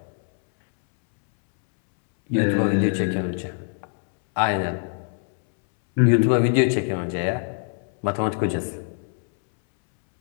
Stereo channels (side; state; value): right; silent; 63 dB below the other